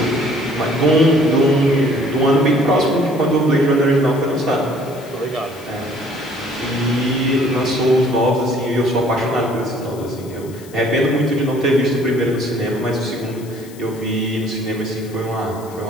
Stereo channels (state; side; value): noise; left; hiss, 22 dB below the sound